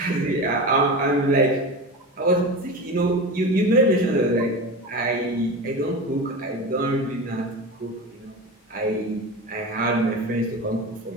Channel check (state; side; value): normal; both; correlation 0.27